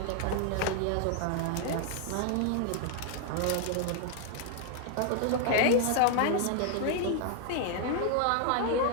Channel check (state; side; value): different; both; correlation 0.00